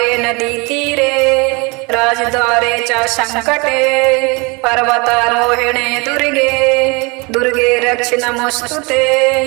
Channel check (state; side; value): quieter; left; 28.1 dB